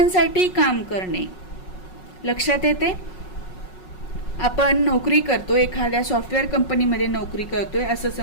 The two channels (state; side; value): late; right; 5.4 ms